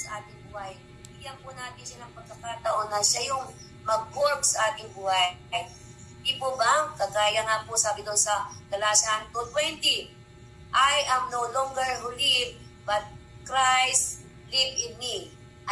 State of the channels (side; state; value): both; identical; correlation 1.00